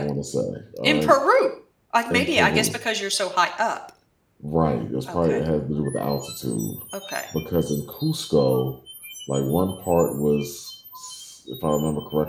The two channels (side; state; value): both; identical; correlation 1.00